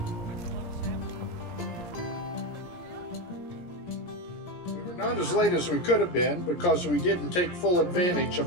We were not as late as we could have been because we didn't take full advantage of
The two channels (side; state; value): right; late; 17 ms